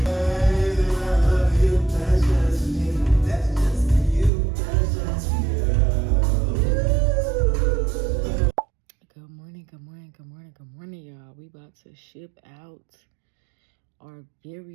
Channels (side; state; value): left; drops out; at 4.3 s